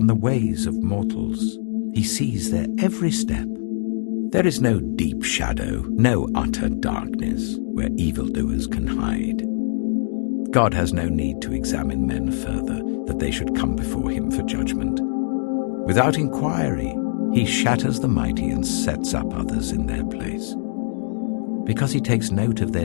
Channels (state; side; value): silent; right; digital silence